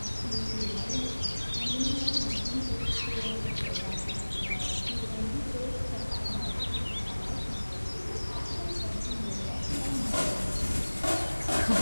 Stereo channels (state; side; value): inverted; both; correlation -1.00